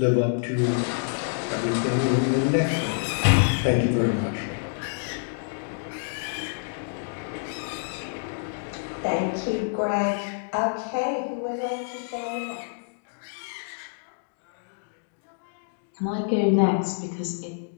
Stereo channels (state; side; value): silent; right; digital silence